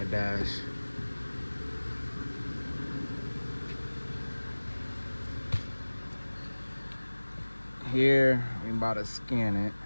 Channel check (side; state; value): both; inverted; correlation -1.00